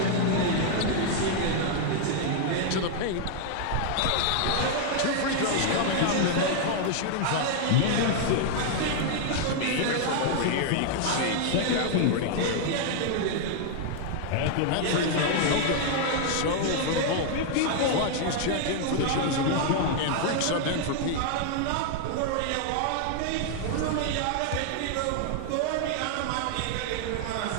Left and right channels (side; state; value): both; different; correlation 0.00